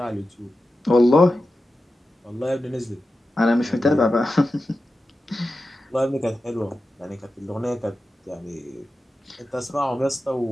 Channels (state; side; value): normal; both; correlation 0.92